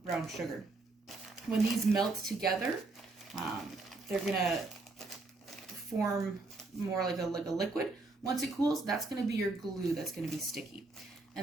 brown sugar. When these melt together, they're gonna form more like a liquid. Once it cools, that's gonna be your glue that's gonna be sticky.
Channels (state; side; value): quieter; left; 3.3 dB